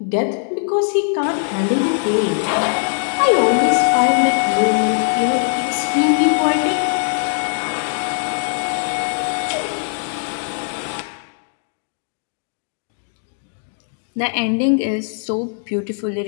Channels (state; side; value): silent; right; digital silence